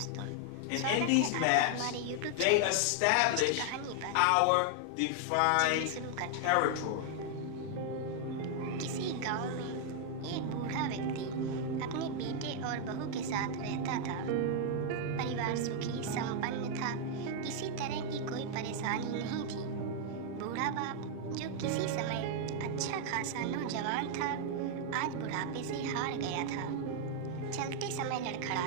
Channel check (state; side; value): different; both; correlation 0.00